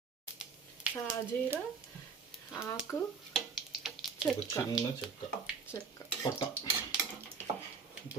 సాజీరా, ఆకు, చిన్న చెక్క చెక్క, పట్ట.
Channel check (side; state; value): left; quieter; 5.5 dB